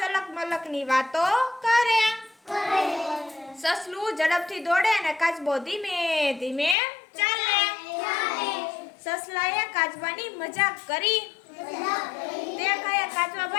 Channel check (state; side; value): drops out; right; at 6.8 s